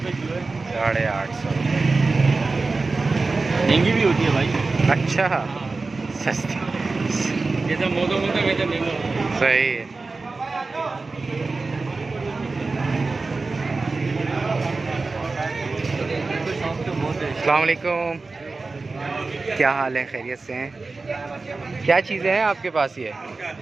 किलो है। 850। महंगी भी होती है भाई। अच्छा, सस्ती। जैसा मौसम होता है वैसे महंगा होता है। सही है। अस्सलाम वालेकुम। क्या हाल है? खैरियत से हैं? क्या चीज़ें हैं आपके पास? ये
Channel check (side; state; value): left; quieter; 3.8 dB